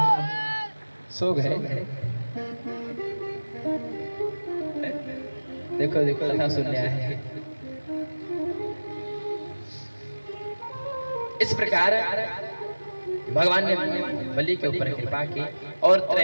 सो गए, देखो देखो कथा सुनने आए हैं। इस प्रकार भगवान ने बलि के ऊपर कृपा की और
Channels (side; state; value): both; inverted; correlation -1.00